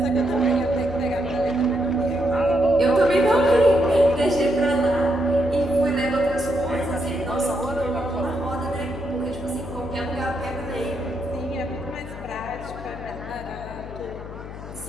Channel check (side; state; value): left; noise; hum, 12 dB below the sound